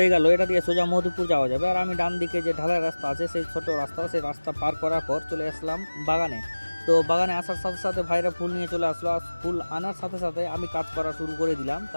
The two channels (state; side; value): inverted; both; correlation -1.00